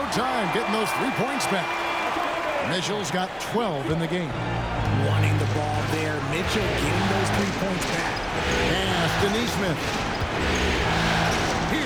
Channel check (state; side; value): identical; both; correlation 1.00